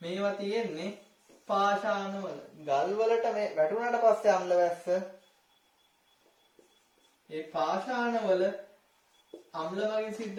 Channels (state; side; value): identical; both; correlation 1.00